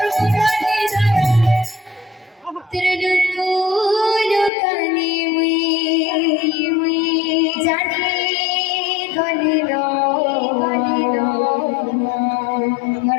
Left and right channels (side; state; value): right; drops out; at 4.5 s